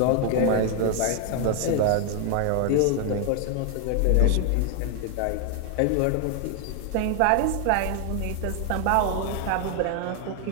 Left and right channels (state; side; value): different; both; correlation 0.01